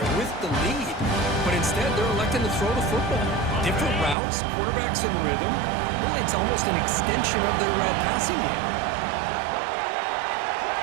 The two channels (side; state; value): left; drops out; at 4.2 s